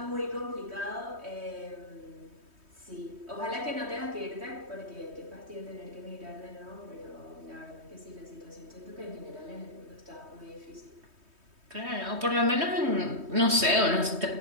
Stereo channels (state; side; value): late; left; 3.2 ms